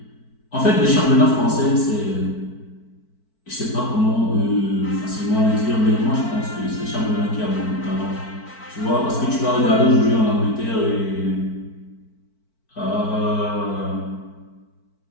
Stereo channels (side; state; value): right; late; 4.5 ms